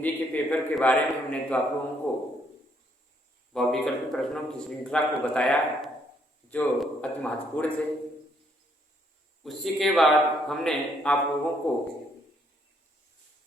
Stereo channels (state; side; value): normal; both; correlation 0.70